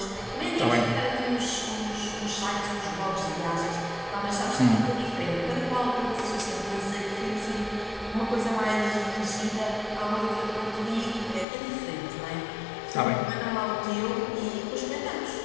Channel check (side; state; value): right; drops out; at 11.5 s